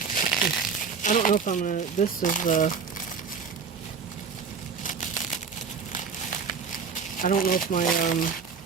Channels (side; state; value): left; quieter; 5.8 dB